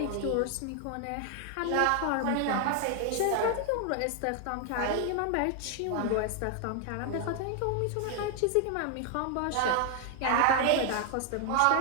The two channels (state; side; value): different; both; correlation 0.00